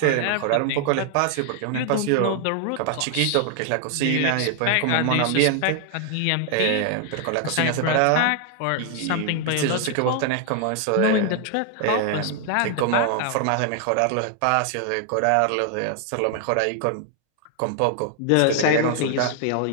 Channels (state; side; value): different; both; correlation 0.00